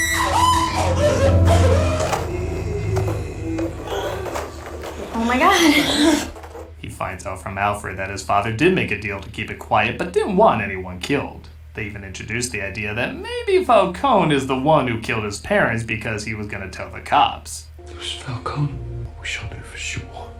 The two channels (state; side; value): identical; both; correlation 1.00